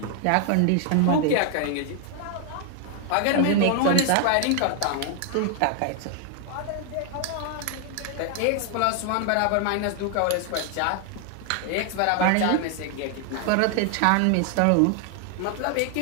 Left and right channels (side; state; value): both; different; correlation 0.00